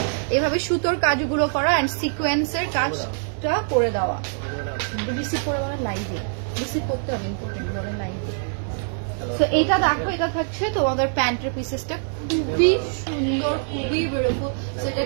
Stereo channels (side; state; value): left; silent; digital silence